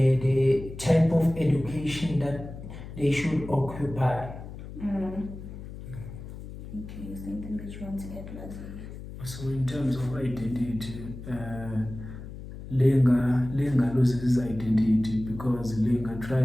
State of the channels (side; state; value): left; noise; hum, 12 dB below the sound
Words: type of education that they should occupy. Okay, is there anything that you want to add, Lwazi? So in terms of identity, Lenga loses his identity because Lenga